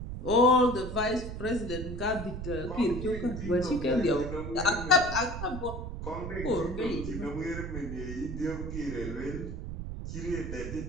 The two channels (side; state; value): right; noise; rumble, 7 dB below the sound